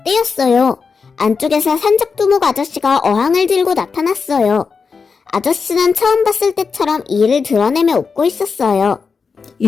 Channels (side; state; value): right; quieter; 5.2 dB